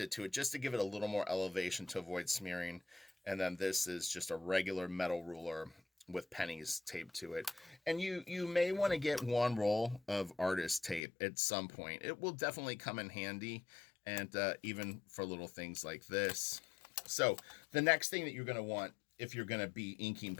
to it just to give it a little more elevation to avoid smearing. And then this is just a regular metal ruler with pennies taped to it. And you may want to get one roll of artist tape at some point. It will definitely come in handy, and even for little things like this. So the next thing that you're going to want if you're going to be inking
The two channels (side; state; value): right; drops out; at 11.0 s